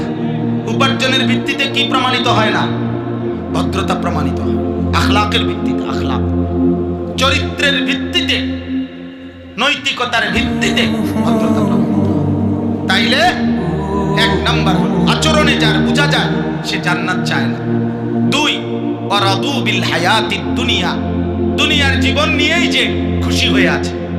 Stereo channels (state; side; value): identical; both; correlation 1.00